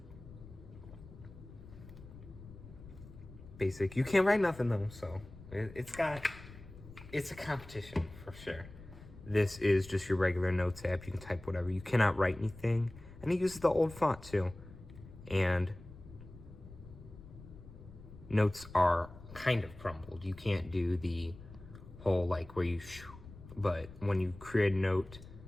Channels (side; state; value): left; noise; rumble, 17 dB below the sound